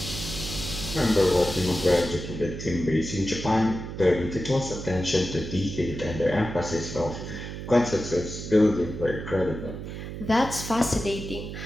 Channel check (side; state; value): right; noise; hum, 8 dB below the sound